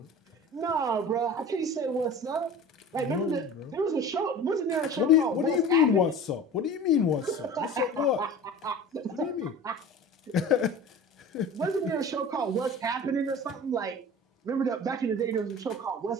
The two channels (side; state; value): both; normal; correlation 0.38